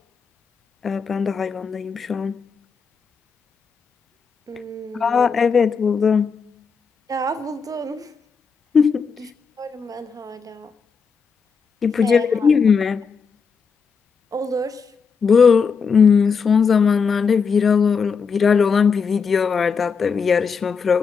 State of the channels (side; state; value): right; quieter; 5.7 dB